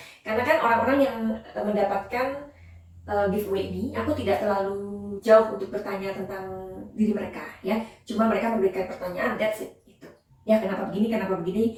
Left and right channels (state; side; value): identical; both; correlation 1.00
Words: Karena kan orang-orang yang mendapatkan giveaway ini, aku tidak terlalu jauh untuk bertanya tentang diri mereka, ya. Cuma mereka memberikan pertanyaan, that's it, itu. Ya, kenapa begini,